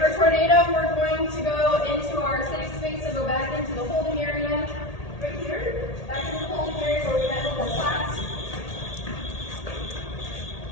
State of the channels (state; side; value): late; right; 1.8 ms